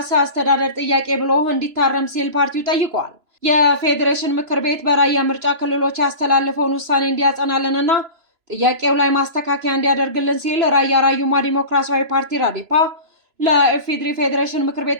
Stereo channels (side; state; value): left; late; 3.0 ms